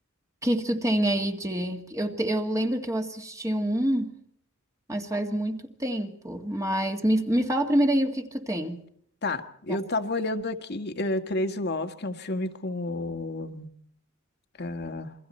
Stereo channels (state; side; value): normal; both; correlation 0.69